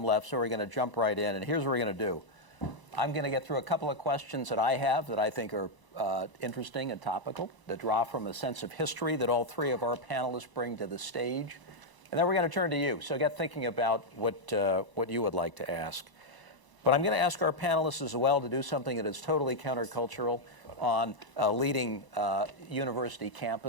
left, so we're going to jump right in. And here's what we're going to do. I'm going to get through a couple of questions that I have that I think are interesting and topical, that draw from a sense of history that all three of our panelists bring to the stage. And then we're going to turn to you. So get thinking about what you would like to ask. But I'm going to ask our panelists as well to do something that is totally countercultural. on a leading university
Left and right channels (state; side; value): late; left; 1.0 ms